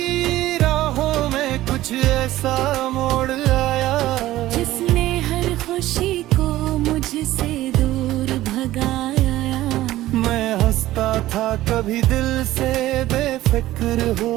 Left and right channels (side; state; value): left; quieter; 15.5 dB